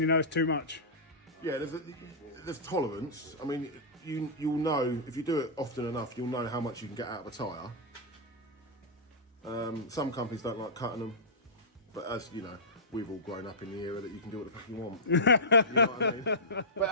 you know it's too much. Yeah, there's tolerance. I mean, you'll know if you do it often enough, you'll know how much you can get out of a tyre. Some companies don't like cutting them, but as you know, we've all grown up in the era that you can do what the fuck you want. You know what I mean? But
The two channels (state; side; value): normal; both; correlation -0.16